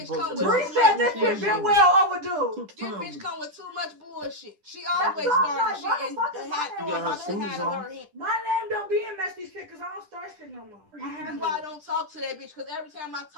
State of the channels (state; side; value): late; left; 10 ms